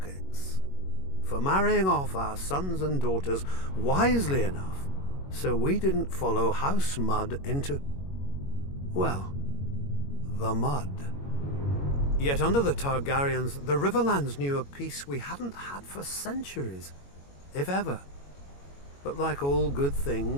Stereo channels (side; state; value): right; late; 21 ms